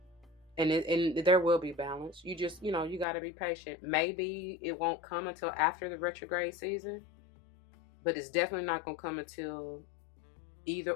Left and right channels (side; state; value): right; drops out; at 3.1 s